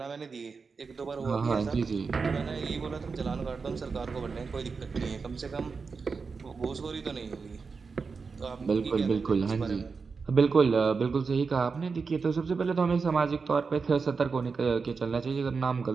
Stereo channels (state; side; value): quieter; left; 4.9 dB